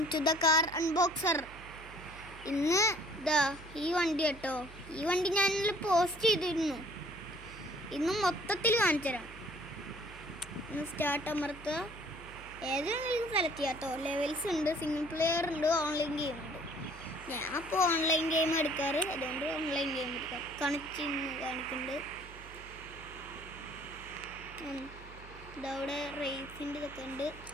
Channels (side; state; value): right; noise; hum, 17 dB below the sound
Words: to the car unboxer. ഇന്ന് ഈ വണ്ടി കേട്ടോ. ഈ വണ്ടി ഞാൻ പോസ്റ്റ് ചെയ്തിരുന്നു. ഇന്ന് മൊത്തത്തിൽ കാണിച്ചു തരാം. ഇന്ന് സ്റ്റാർട്ട് അമർത്തുക. ഏതെങ്കിലും സെലക്ട് ചെയ്യാം കേട്ടോ. ലെവൽസ് ഉണ്ട്, സിംഗിൾ പ്ലെയർ ഉണ്ട്, ഓൺലൈൻ ഗെയിം ഉണ്ട്. ഞാൻ അപ്പോൾ ഓൺലൈൻ ഗെയിം എടുക്കാറ്, അതുകൊണ്ട് ഓൺലൈൻ ഗെയിം എടുക്കാം. കാണിക്കുന്നുണ്ട്. ഇതവിടെ റേസിൻ്റെ ഇതൊക്കെ ഉണ്ട്.